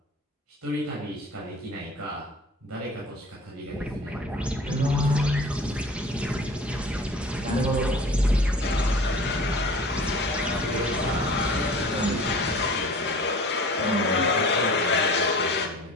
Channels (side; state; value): both; normal; correlation 0.43